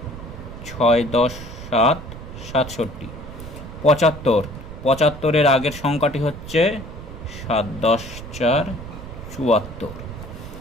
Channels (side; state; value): right; noise; rumble, 12 dB below the sound